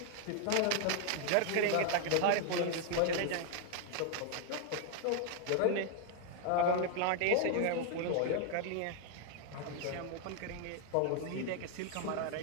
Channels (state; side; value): different; both; correlation 0.00